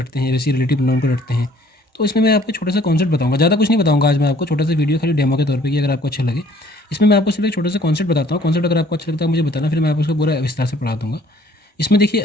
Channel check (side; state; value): both; normal; correlation 0.58